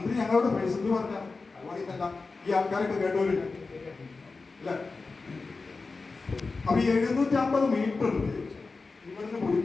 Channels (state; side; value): quieter; right; 4.0 dB